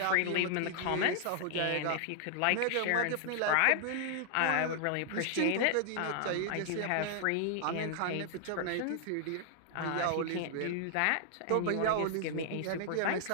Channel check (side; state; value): both; different; correlation -0.01